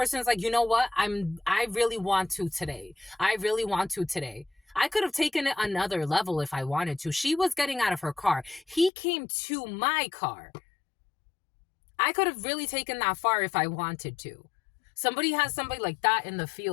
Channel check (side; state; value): right; drops out; at 8.9 s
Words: like, you know what? I really want to today. I really want to today. I could have taken it another level if I wanted to. She was getting out of her car. He came to my car. I could have really taken that far if I wanted to. Somebody has somebody like that in the